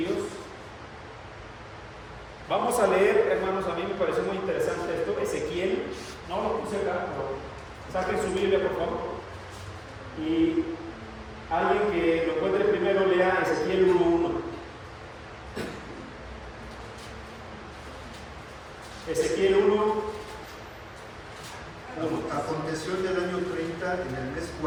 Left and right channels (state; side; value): identical; both; correlation 1.00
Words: Vamos a leer, hermanos, a mí me pareció muy interesante esto, Ezequiel, no lo puse acá, pero saquen su Biblia, por favor. Y alguien que lo encuentre primero, lea Ezequiel 1:1. Ezequiel 1:1. Aconteció en el año 30, en el mes